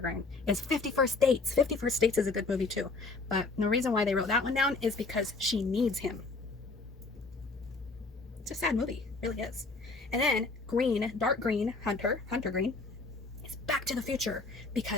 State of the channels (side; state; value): right; quieter; 3.7 dB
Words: is 50 First Dates. 50 First Dates is a good movie too, but the reason why they wrote that one down is because she needs him. It's a sad movie, it really is. And then green, dark green, Hunter green, is Back to the Future,